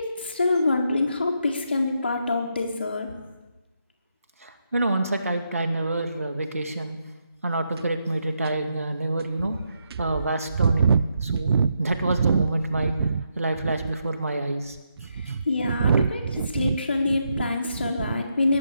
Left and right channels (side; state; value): both; inverted; correlation -0.80